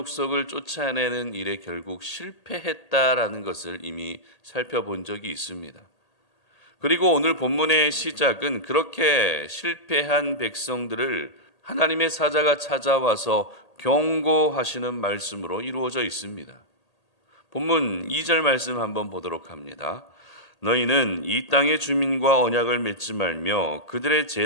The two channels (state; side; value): late; right; 1.8 ms